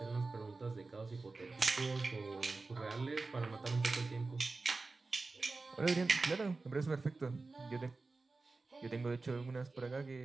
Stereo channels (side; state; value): left; quieter; 3.7 dB